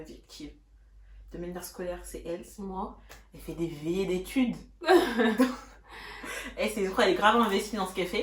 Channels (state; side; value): identical; both; correlation 1.00